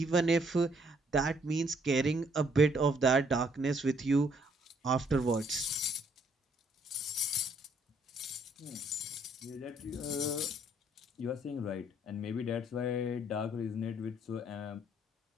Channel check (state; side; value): normal; both; correlation 0.67